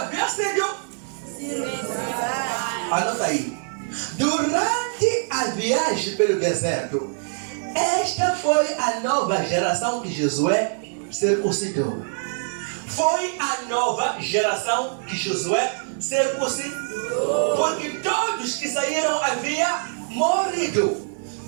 sido circuncidados. Anota aí. Durante a viagem pelo deserto, esta foi a nova geração que Josué circuncidou. Foi a nova geração que Josué circuncidou. Porque todos que saíram haviam morrido.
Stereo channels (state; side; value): silent; left; digital silence